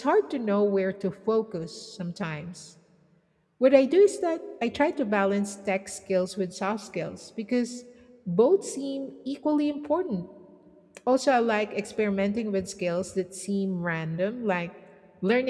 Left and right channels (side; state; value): both; identical; correlation 1.00